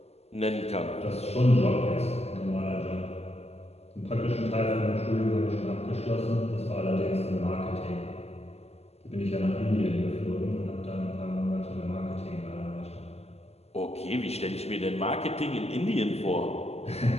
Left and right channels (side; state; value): right; late; 0.30 ms